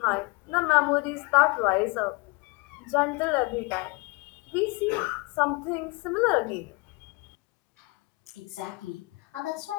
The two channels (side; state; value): right; quieter; 27.0 dB